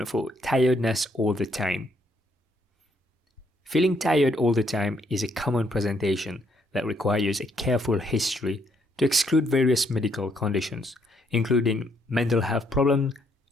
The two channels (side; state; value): both; normal; correlation 0.71